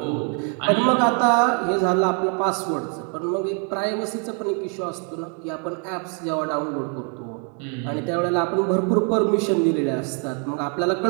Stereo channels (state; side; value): quieter; left; 39.6 dB